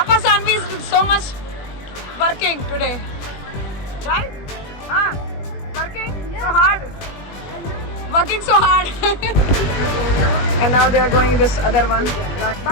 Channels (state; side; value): late; right; 20 ms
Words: Sanvi is so much working today, right? Working so hard. And now they are going this other one.